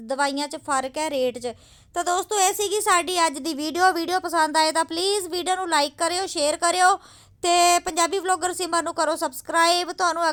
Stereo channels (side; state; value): both; identical; correlation 1.00